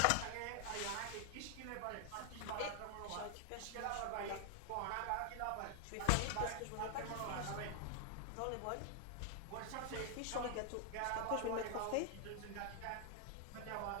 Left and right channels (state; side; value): different; both; correlation 0.00